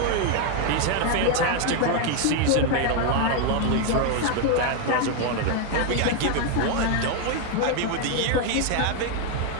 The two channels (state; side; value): different; both; correlation 0.01